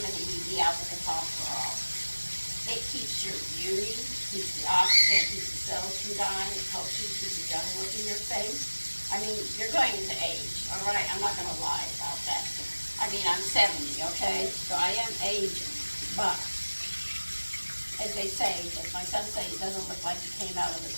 E dealpha-ketochrol. It keeps your beauty, keeps the oxygen, keeps the cells from dying, it helps you keep a young look in your face. I mean, you're going to age, all right? I'm not going to lie about that. I mean, I'm 70, okay? So I am aging, but as they say, as my son says, it doesn't look like it came out of the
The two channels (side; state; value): both; inverted; correlation -1.00